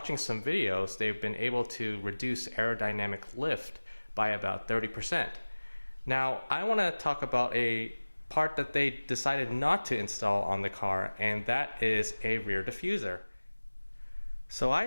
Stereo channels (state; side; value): inverted; both; correlation -1.00